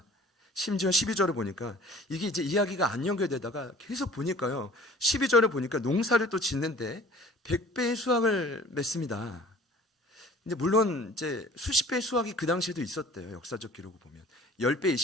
심지어 12절을 보니까 이게 이제 이야기가 안 연결되다가 계속 보니까요 12절을 보니까 농사를 또 짓는데 100배의 수확을 맺습니다. 근데 물론 이제 수십 배의 수확이 그 당시에도 있었대요. 역사적 기록을 보면 10배,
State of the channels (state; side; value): normal; both; correlation 0.48